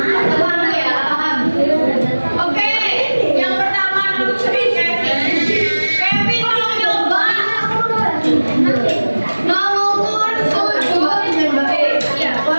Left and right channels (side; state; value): both; inverted; correlation -1.00